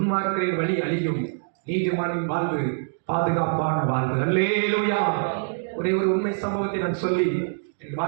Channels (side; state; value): left; silent; digital silence